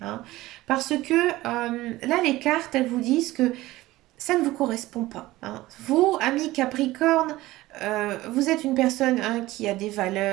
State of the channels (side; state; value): left; quieter; 17.7 dB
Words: Parce que là, les cartes, elles vous disent que ça ne vous correspond pas, hein. Vous, ami Capricorne, vous êtes une personne hein, qui a des